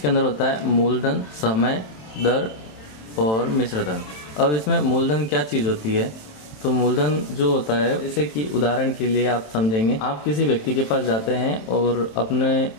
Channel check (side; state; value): right; late; 27 ms